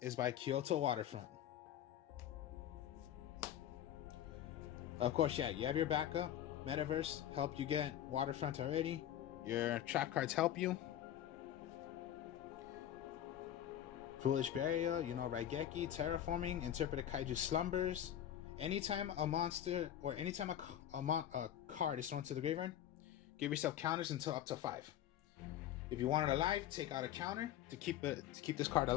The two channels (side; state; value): right; quieter; 11.2 dB